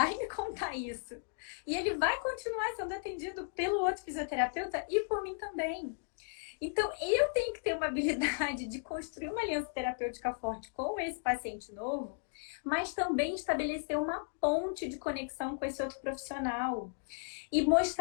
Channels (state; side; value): silent; right; digital silence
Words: me contar isso. E ele vai continuar sendo atendido pelo outro fisioterapeuta e por mim também. Então, eu tenho que ter uma habilidade de construir uma aliança terapêutica forte com esse paciente novo, mas também estabelecer uma ponte de conexão com esse outro profissional e